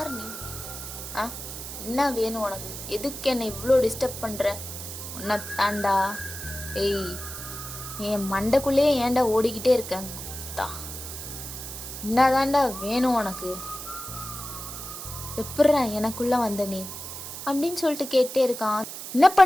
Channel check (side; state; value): right; noise; hiss, 9 dB below the sound